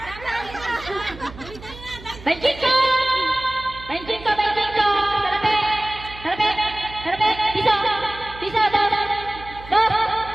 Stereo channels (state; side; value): noise; right; hum, 17 dB below the sound